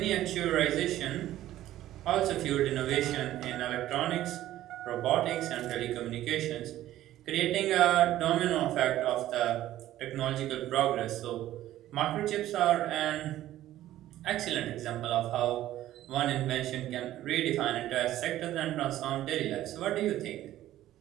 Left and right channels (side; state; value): left; quieter; 13.8 dB